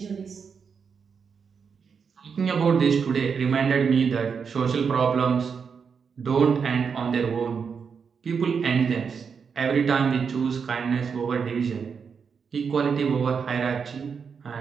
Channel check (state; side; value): quieter; left; 6.1 dB